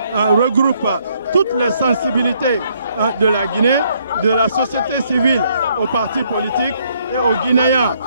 regroupe toutes les sensibilités de la Guinée, de la société civile aux partis politiques et aux Guinéens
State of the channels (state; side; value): inverted; both; correlation -0.69